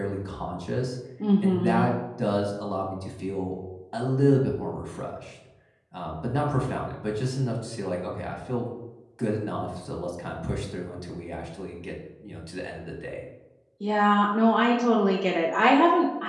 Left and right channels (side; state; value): both; identical; correlation 1.00